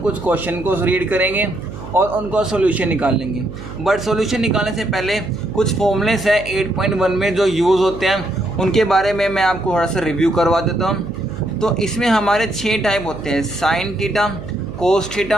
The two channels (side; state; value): right; noise; hum, 12 dB below the sound